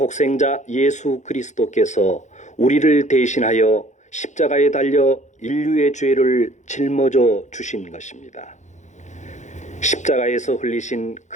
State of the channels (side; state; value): right; late; 0.35 ms